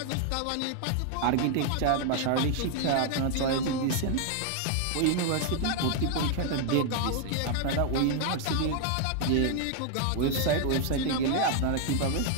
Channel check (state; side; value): different; both; correlation 0.00